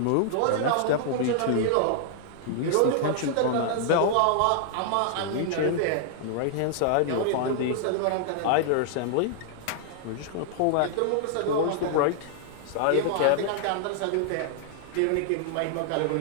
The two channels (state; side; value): different; both; correlation -0.01